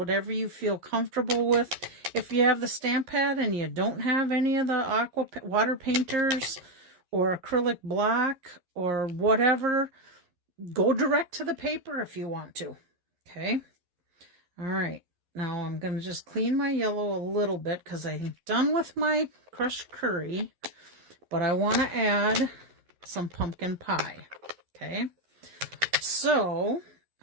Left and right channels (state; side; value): late; left; 11 ms